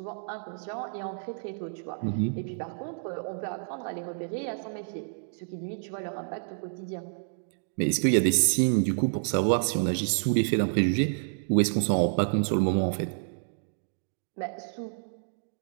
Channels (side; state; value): left; silent; digital silence